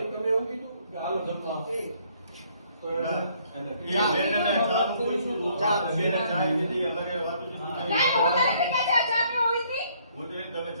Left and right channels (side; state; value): both; inverted; correlation -0.65